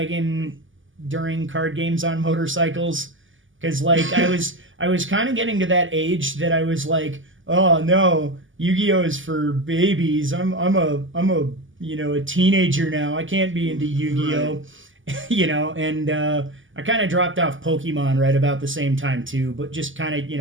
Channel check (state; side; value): late; left; 0.57 ms